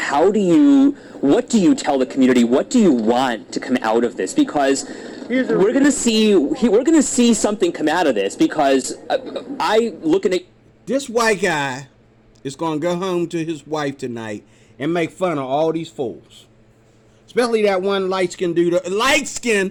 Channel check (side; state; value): both; identical; correlation 1.00